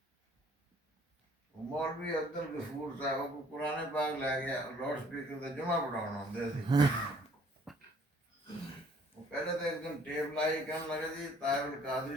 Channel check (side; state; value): both; normal; correlation 0.58